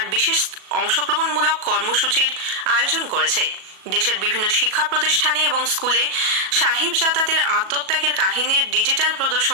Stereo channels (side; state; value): left; late; 37 ms